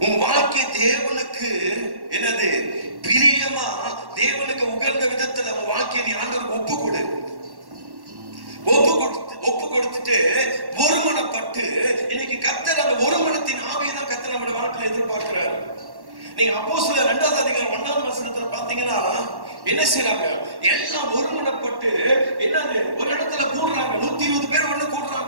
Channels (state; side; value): late; left; 1.1 ms